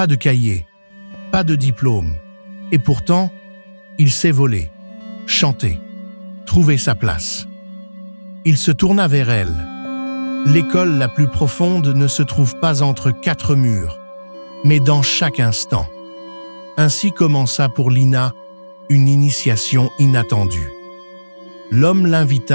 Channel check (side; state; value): both; inverted; correlation -1.00